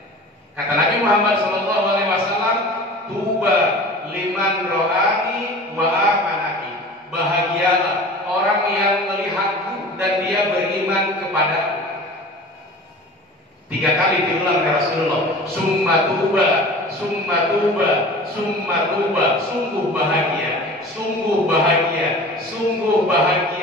Kata Nabi Muhammad SAW, tuba liman ro'ani wa amanaki, bahagialah orang yang melihatku dan dia beriman kepadaku. 3 kali diulang oleh Rasulullah, summa tuba, summa tuba, summa tuba. Sungguh bahagia, sungguh bahagia, sungguh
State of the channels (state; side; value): normal; both; correlation 0.40